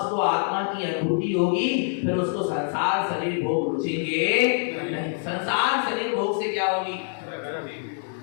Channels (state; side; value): silent; right; digital silence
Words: आत्मा की अनुभूति होगी, फिर उसको संसार शरीर भोग रुचेंगे नहीं। संसार शरीर भोग से क्या होगी?